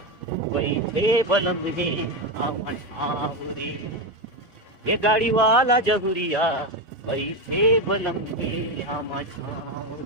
बैठे बलम रे आवन रे ये गाड़ी वाला जहुरिया बैठे बलम रे आवन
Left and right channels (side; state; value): both; normal; correlation 0.12